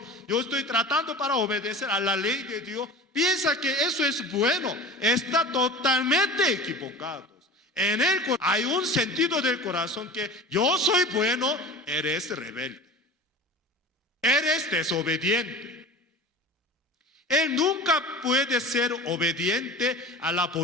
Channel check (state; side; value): normal; both; correlation 0.35